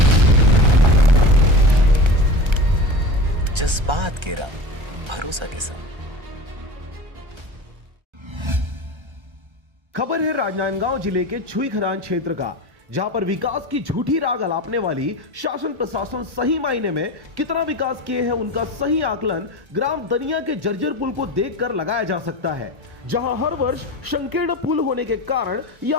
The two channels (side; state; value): left; late; 1.3 ms